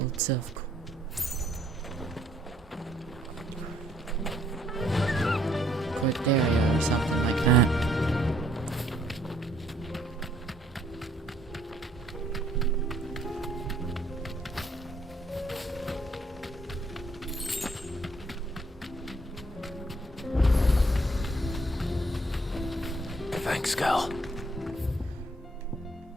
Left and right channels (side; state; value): both; normal; correlation 0.66